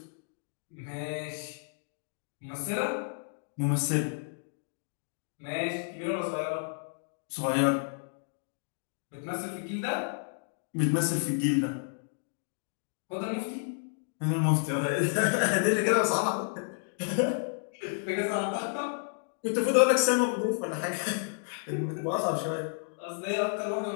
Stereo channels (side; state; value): right; silent; digital silence